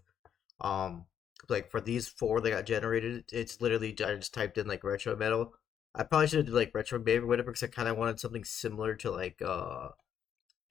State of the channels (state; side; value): quieter; right; 8.8 dB